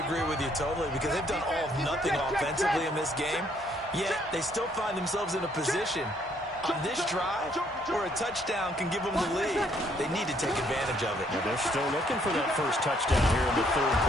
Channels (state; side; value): normal; both; correlation 0.67